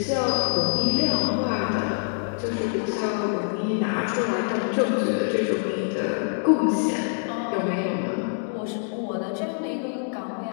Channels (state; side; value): silent; right; 62 dB below the other